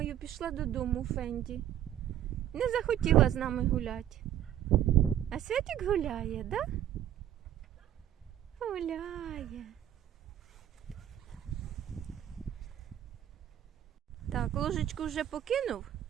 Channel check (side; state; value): left; quieter; 11.5 dB